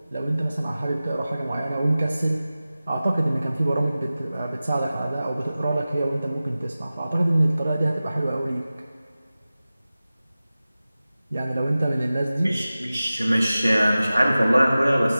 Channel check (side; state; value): both; inverted; correlation -0.96